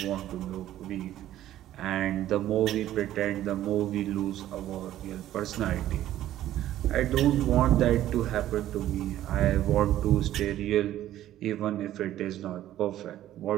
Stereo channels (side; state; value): left; quieter; 13.0 dB